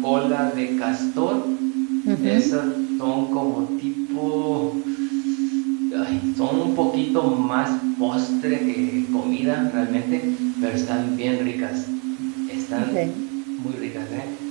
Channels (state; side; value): quieter; left; 35.8 dB